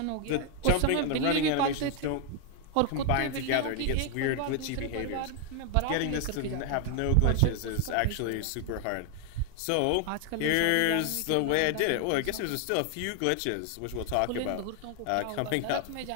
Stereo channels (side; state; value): both; different; correlation 0.00